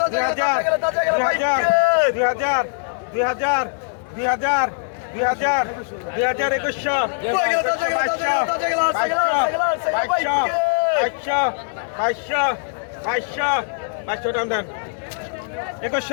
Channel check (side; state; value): right; silent; 64 dB below the other